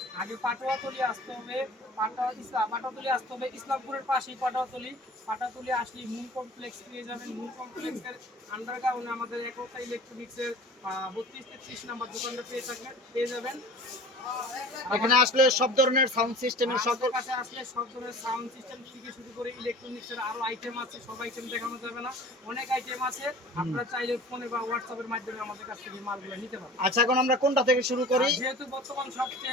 আগে পাটোয়াতলি আসতে হবে। পাটোয়াতলি আসতে হবে, ইসলামপুরের পাশেই পাটোয়াতলি। পাটোয়াতলি আসলে মূল কমপ্লেক্স পেয়ে যাবেন। মূল কমপ্লেক্সের আন্ডারগ্রাউন্ডে আমাদের একতা ইলেকট্রনিক্সের 32-33 নাম্বার দোকানটা পেয়ে যাবেন। এখানে আসলে সব ধরনের সাউন্ড সিস্টেমের সকল কাছে আসলে সব ধরনের সাউন্ড সিস্টেম থেকে শুরু করে ইলেকট্রনিক্সের আরো আইটেম আছে। সব আইটেম দেখানো যাবে না, অনেক আইটেম আছে। আপনারা চাইলে ফোনে বা হোয়াটসঅ্যাপের মাধ্যমে আমাদের কাছ থেকে মালগুলো নিতে পারবেন। আচ্ছা, এখন আমরা কোনটা থেকে শুরু করি? যেহেতু বর্তমান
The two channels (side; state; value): both; normal; correlation 0.42